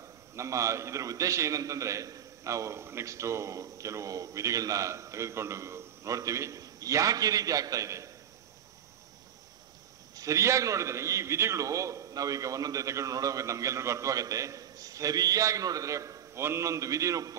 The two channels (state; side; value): quieter; left; 9.4 dB